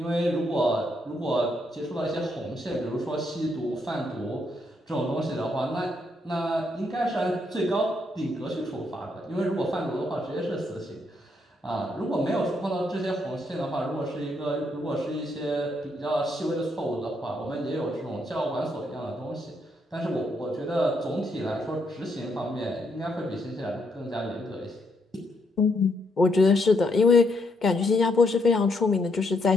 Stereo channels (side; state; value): both; normal; correlation 0.76